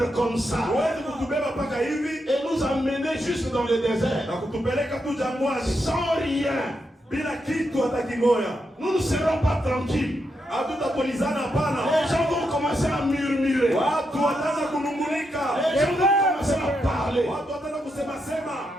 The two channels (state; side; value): normal; both; correlation 0.83